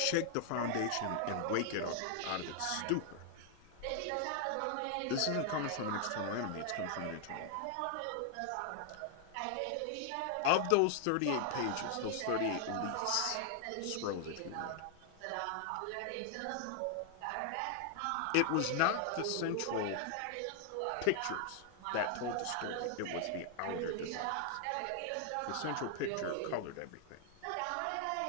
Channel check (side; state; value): both; different; correlation 0.00